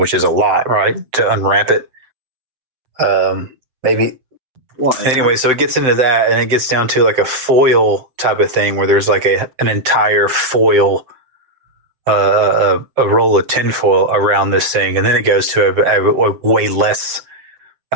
is a lot, right? To unwrap it. Maybe. What? Anyway, so it gets into that, and it gets down to like a foil type of thing where there's like an entire foil, a roll of tinfoil around this thing, and then it goes to a way less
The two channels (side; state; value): left; late; 7.7 ms